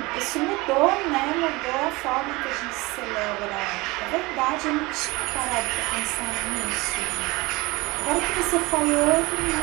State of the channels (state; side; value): quieter; left; 22.9 dB